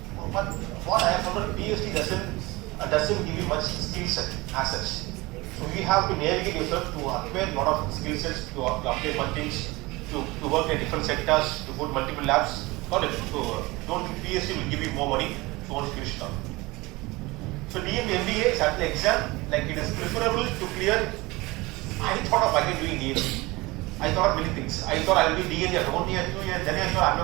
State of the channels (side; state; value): left; quieter; 22.2 dB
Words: but what I have found, PhD doesn't give you much skill set as such. So you have to navigate yourself to acquire a lot of skill sets, to update one things, to work in different sectors, to go to multiple labs. Not it. So don't think PhD will give you more money, so once you finish it up. So DMB MBA is actually exam, it is preferable to clear. I thought of again doing DMB. I thought many things. I thought I will do DMB after 1 year, 2 years, then I thought I'm